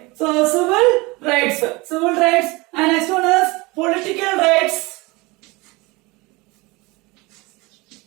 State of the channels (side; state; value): left; quieter; 24.1 dB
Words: so civil rights, and next one is political rights,